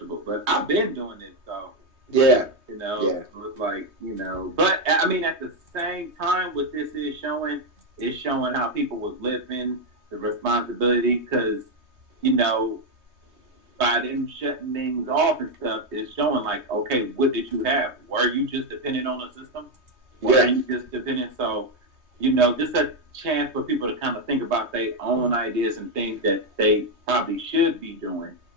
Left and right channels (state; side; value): late; left; 3.2 ms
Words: But I've been doing this, though. Yeah. So it's like, But, at the same time, what this is showing how people was living the responsibility, because, you know, by them shutting things off and stuff, it's showing like, okay, what did you have? Were you just dependent on the system? Were you just dependent? So, you know, just a chance for people to kind of think about their own ideas and things that they probably should be doing.